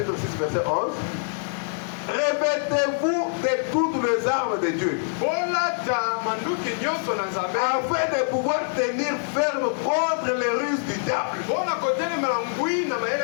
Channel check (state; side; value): silent; right; 62 dB below the other